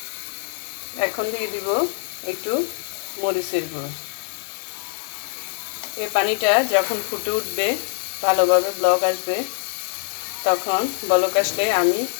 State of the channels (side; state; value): right; silent; 56 dB below the other